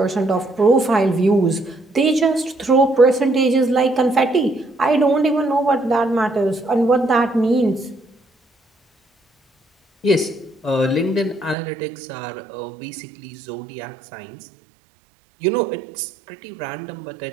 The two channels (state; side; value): drops out; left; at 11.6 s